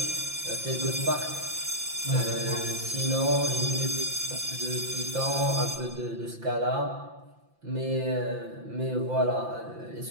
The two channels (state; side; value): late; left; 5.8 ms